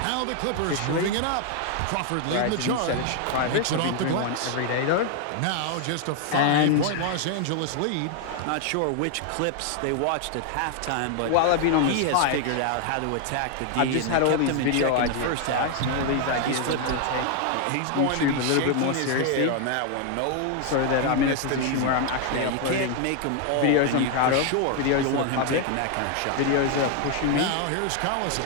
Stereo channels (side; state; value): both; different; correlation 0.00